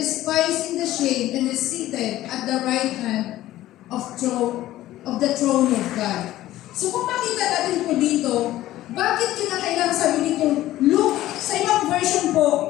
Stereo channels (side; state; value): right; quieter; 14.9 dB